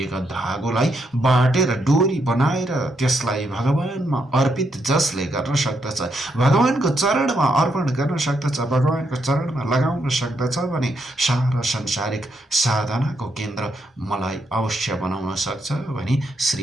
धागोलाई बाटेर डोरी बनाएर त्यसलाई भगवानमा अर्पित जसले गर्न सक्दछ, भगवानको चरणमा अर्पण गर्न सक्दछ, भगवानको चरणमा लगाउन सक्दछ भने सारा संसारिक साधनाको केन्द्र मलाई अवश्य बनाउन सक्छ भनी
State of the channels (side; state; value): both; normal; correlation 0.78